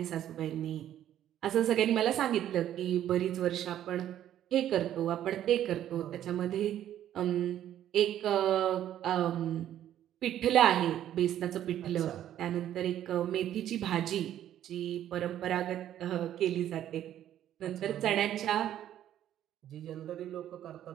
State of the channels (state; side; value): quieter; left; 11.4 dB